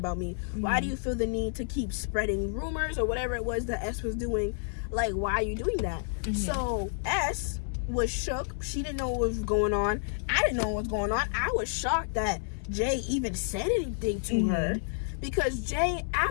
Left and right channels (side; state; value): right; silent; digital silence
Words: me? Why do you feel the need to keep spreading rumors or whatever it was that S was doing? Like, why are you doing that? So S was shook. She didn't know what was going on. I didn't know what was going on. I was shocked that Jay even said anything to her, because Jay,